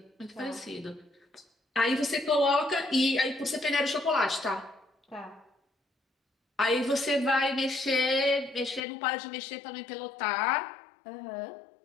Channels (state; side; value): drops out; right; at 8.8 s